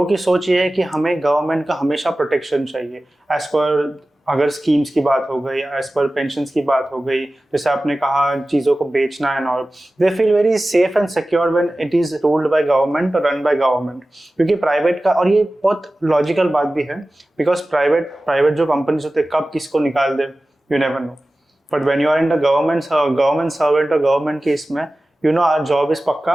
की सोच ये है कि हमें गवर्नमेंट का हमेशा प्रोटेक्शन चाहिए. एज पर अगर स्कीम्स की बात हो गई, एज पर पेंशन्स की बात हो गई, जैसे आपने कहा चीज़ों को बेचना है और they feel very safe and secure when it is ruled by government और रन बाय गवर्नमेंट. क्योंकि प्राइवेट का, और ये बहुत लॉजिकल बात भी है, बिकॉज प्राइवेट जो कंपनीज होते हैं कब किसको निकाल दे you never know. But when you are in the government servant और गवर्नमेंट की इसमें you know our job is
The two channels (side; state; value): both; normal; correlation 0.96